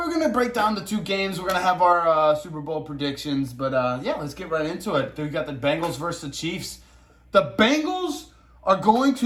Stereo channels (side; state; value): both; identical; correlation 1.00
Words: break down the two games. We're gonna have our Super Bowl predictions, but yeah, let's get right into it. We got the Bengals versus the Chiefs. The Bengals are going